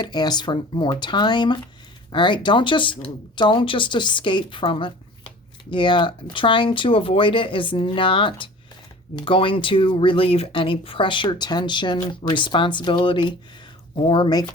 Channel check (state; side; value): normal; both; correlation 0.43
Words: ask for more time. All right, don't just escape from it. Yeah, trying to avoid it is not going to relieve any pressure, tension, responsibility, or make